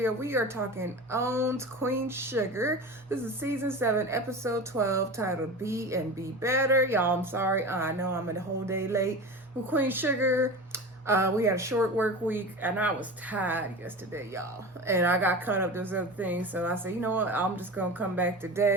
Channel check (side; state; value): both; normal; correlation 0.30